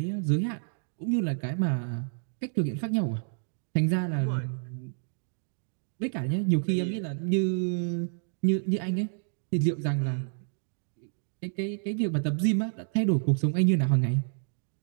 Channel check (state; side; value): silent; left; digital silence